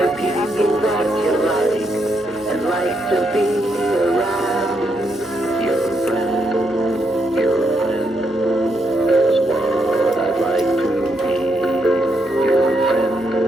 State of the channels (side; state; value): both; normal; correlation 0.78